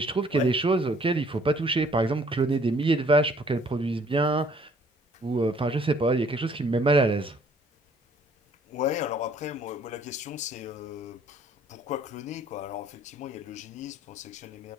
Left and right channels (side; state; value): both; normal; correlation 0.59